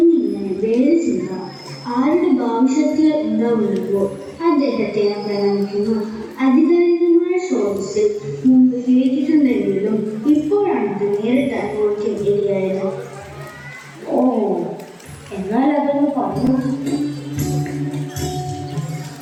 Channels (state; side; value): identical; both; correlation 1.00